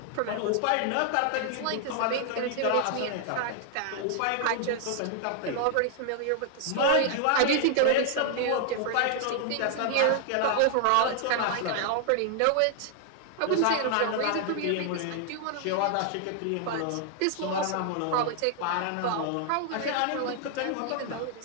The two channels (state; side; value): different; both; correlation 0.00